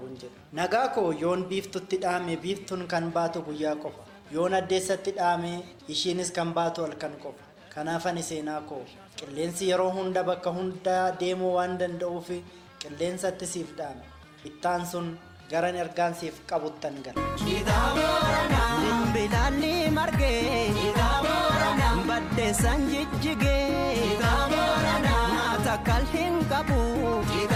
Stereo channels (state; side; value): identical; both; correlation 1.00